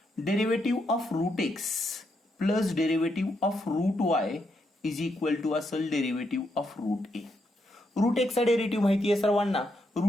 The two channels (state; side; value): normal; both; correlation 0.79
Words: Derivative of root x plus derivative of root y is equal to असेल derivative of root a. Root एक्सचा derivative माहिती आहे सर्वांना.